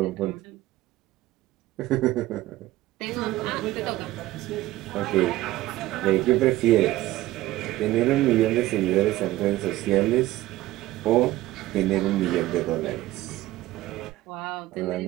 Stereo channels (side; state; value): left; quieter; 16.5 dB